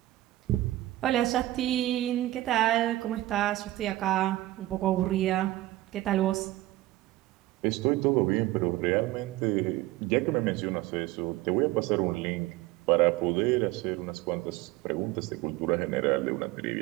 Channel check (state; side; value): quieter; left; 16.6 dB